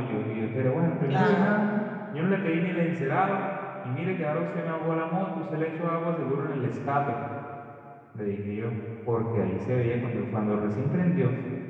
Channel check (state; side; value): identical; both; correlation 1.00